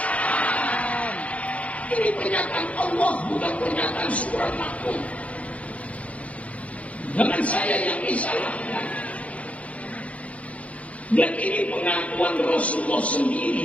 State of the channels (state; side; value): late; right; 0.065 ms